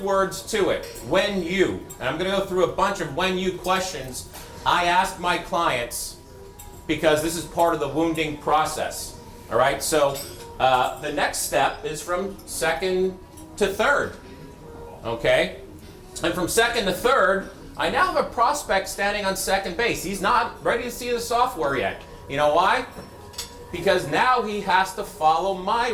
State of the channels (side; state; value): both; identical; correlation 1.00